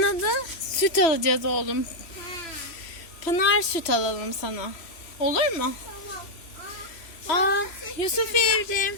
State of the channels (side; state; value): right; late; 3.0 ms